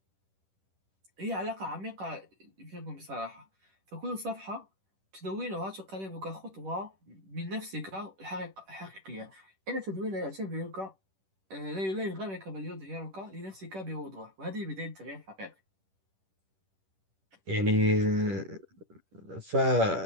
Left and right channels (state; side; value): late; left; 10 ms